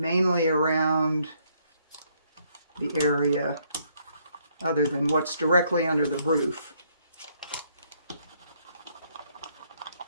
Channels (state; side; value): inverted; both; correlation -0.70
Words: around the area other than what's directly under the roof.